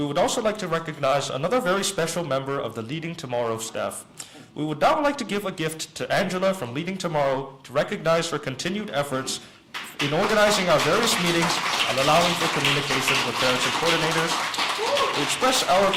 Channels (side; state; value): both; identical; correlation 1.00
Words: would also like to recognize another very special member of the Leading Tomorrow staff. We would now like to give a gift to Angela from Leading Tomorrow to recognize her continued efforts in organizing our various meetings and allowing for communication with parents and coordinators. We express our